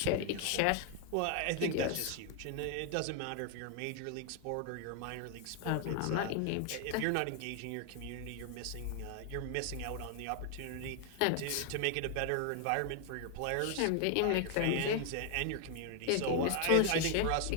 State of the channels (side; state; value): both; different; correlation 0.00